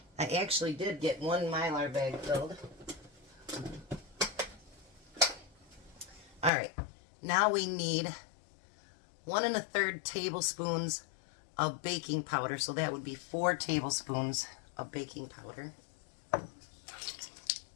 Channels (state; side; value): drops out; right; at 6.5 s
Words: I actually did get 1 Mylar bag filled. Alright, now we need 1 1/3 tablespoons of baking powder, so that would be 4 tablespoons of baking powder.